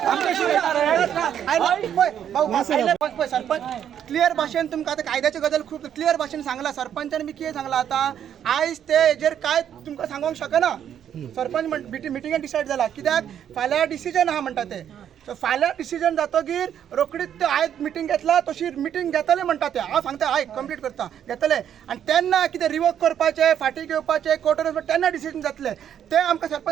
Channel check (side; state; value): left; quieter; 9.5 dB